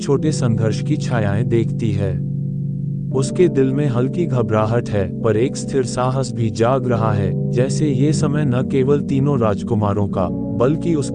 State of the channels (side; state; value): both; identical; correlation 1.00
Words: संघर्ष की छायाएं देखती है। उसके दिल में हल्की घबराहट है, पर एक स्थिर साहस भी जाग रहा है, जैसे ये समय न केवल तीनों राजकुमारों का, बल्कि